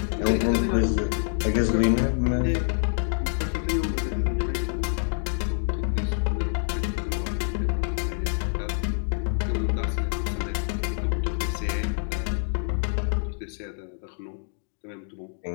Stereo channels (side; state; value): right; silent; digital silence